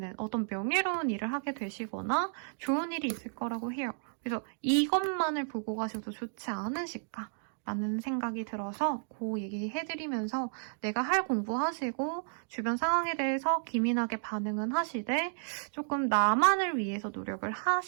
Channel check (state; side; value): silent; left; digital silence